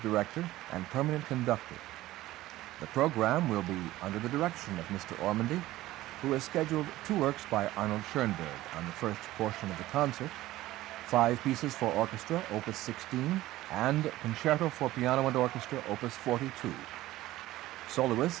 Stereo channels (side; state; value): left; quieter; 16.3 dB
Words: director and permanent conductor. The program will be under the direction of Mr. Ormandy, who has scheduled 2 works by Arnold Schoenberg on the first portion of the concert, 5 pieces for orchestra, Opus 16, and Concerto for Piano and Orchestra, Opus 42. Soloist